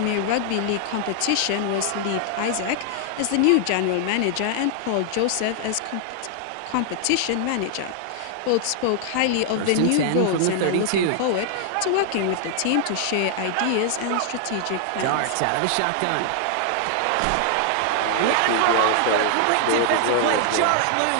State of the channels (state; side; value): different; both; correlation 0.00